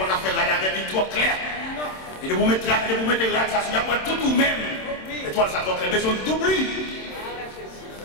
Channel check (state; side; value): late; right; 27 ms